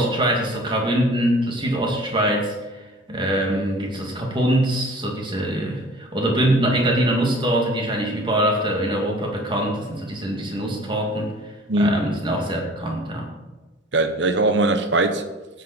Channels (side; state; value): both; normal; correlation 0.45